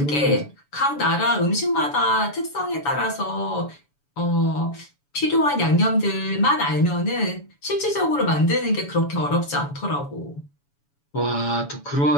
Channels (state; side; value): late; right; 7.1 ms